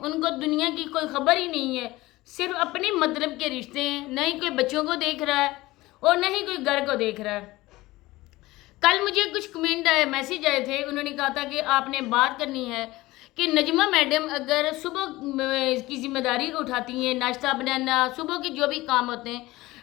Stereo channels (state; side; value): quieter; right; 19.0 dB